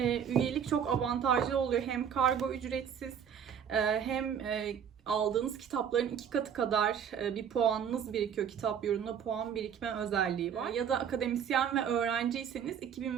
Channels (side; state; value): left; quieter; 8.1 dB